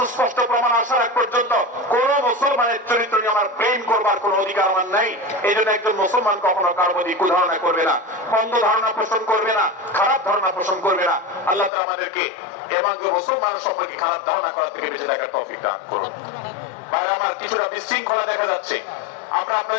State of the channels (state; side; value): drops out; right; at 11.7 s